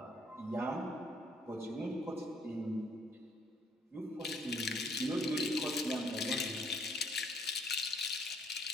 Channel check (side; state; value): both; normal; correlation 0.66